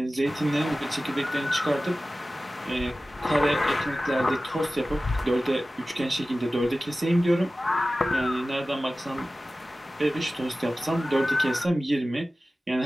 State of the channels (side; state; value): both; normal; correlation 0.96